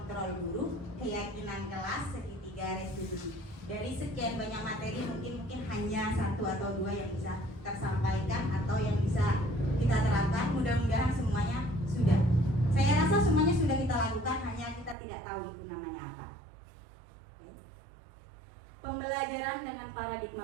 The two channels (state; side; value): drops out; left; at 15.0 s